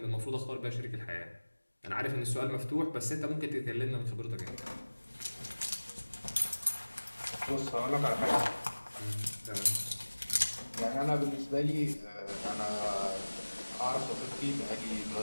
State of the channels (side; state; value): both; inverted; correlation -1.00